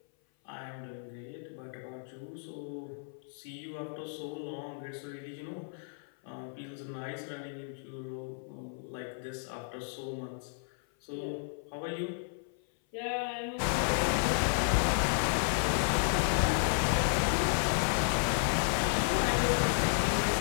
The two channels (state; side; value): silent; right; 56 dB below the other